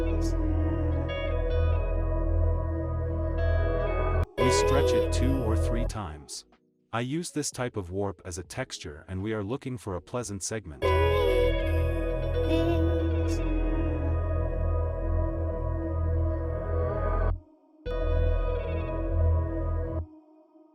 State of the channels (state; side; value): identical; both; correlation 1.00